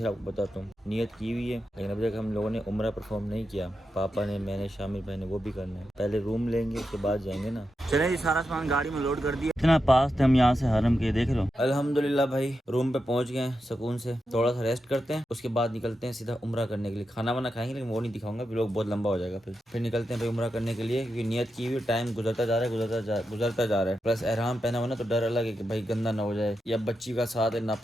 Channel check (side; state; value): both; normal; correlation 0.88